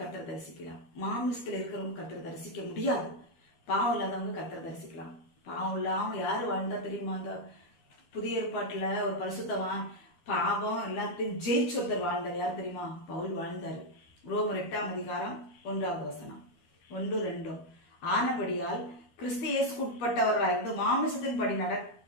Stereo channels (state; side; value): late; right; 12 ms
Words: தரிசிக்கலாம். மாமிசத்தில் இருக்கிறவங்க கர்த்தரை தரிசிக்க முடியாது. பாவம் இல்லாதவங்க கர்த்தரை தரிசிக்கலாம். பாவம் இல்லாமல் யார் வாழ்ந்தா தெரியுமா? அந்த புதிய ஏற்பாட்டில் ஒரு பரிசுத்தவான் பாவம் எல்லாத்தையும் ஜெயிச்சு ஒருத்தர் வாழ்ந்தார். யார் தெரியுமா? பவுல் வாழ்ந்தார். ரோமர் 8ஆம் அதிகாரம் 1வது வசனம் 1-2. ஆனபடியால் கிறிஸ்து இயேசுக்கு உட்பட்டவர்களாயிருந்து மாமிசத்தின் படி